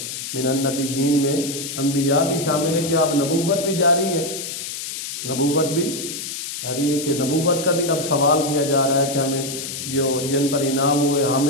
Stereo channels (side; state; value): left; noise; hiss, 7 dB below the sound